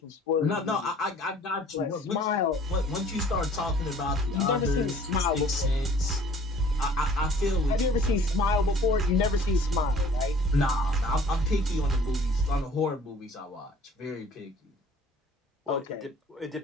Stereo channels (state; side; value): normal; both; correlation 0.52